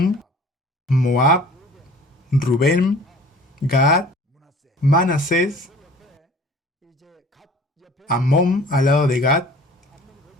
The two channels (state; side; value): normal; both; correlation 0.48